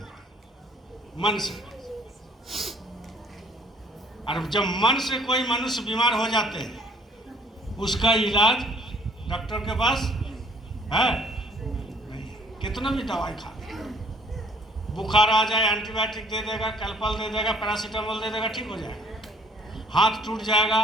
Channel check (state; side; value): normal; both; correlation 0.59